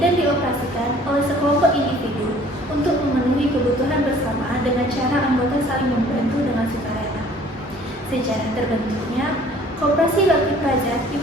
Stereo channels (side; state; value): both; normal; correlation 0.53